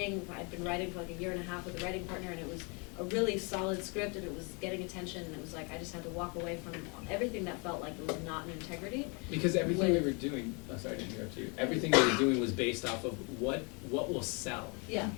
I'd been writing for like a year and a half with a writing partner, and it was a really solid script, and it was getting attention, and it was like I just had to walk away from everything that felt like it was not in integrity. Because everything we were doing, sorry to interrupt you, everything we were doing was based off of what will sell. Yeah,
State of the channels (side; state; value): right; quieter; 32.4 dB